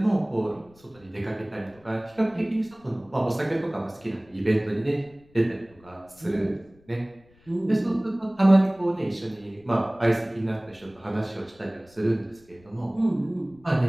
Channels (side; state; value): left; noise; rumble, 28 dB below the sound